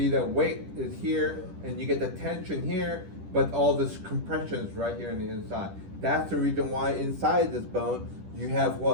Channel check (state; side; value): late; left; 10 ms